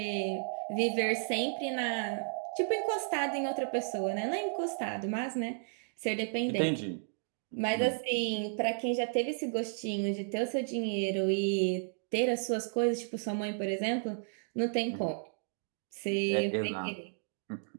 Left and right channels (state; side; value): silent; left; digital silence